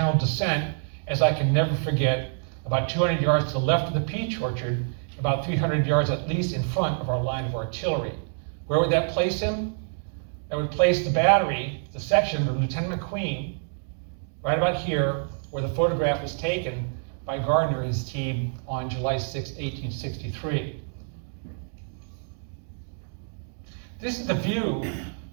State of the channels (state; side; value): silent; left; 60 dB below the other